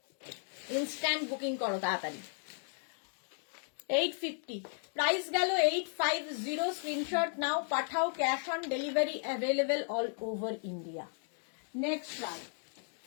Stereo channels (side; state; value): right; silent; 54 dB below the other